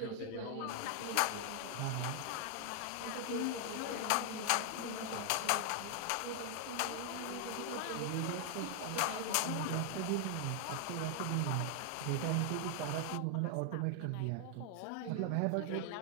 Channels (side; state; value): both; different; correlation 0.00